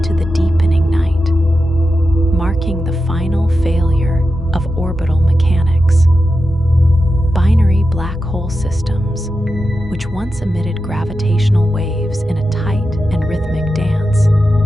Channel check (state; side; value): normal; both; correlation 0.90